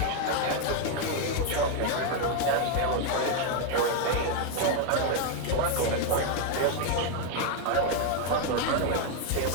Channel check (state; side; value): different; both; correlation 0.01